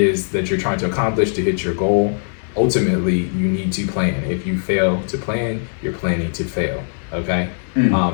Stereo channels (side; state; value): right; silent; digital silence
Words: that you're trying to accomplish to hit your goal, ultimately you need to plan. If you fail to plan, you're planning to fail. Okay.